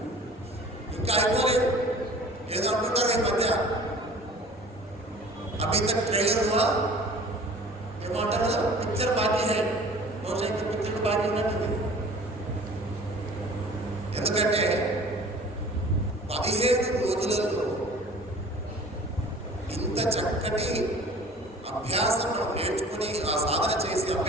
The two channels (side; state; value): both; normal; correlation 0.46